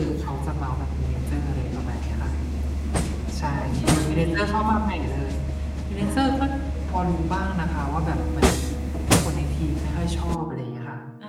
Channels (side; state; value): both; identical; correlation 1.00